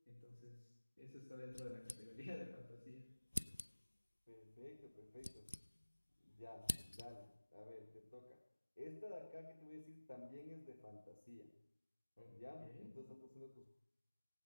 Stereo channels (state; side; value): inverted; both; correlation -1.00